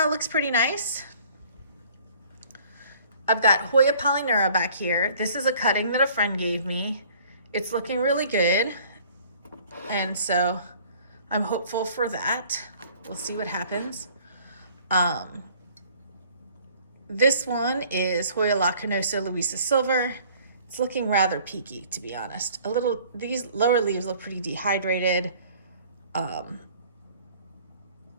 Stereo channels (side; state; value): both; inverted; correlation -0.54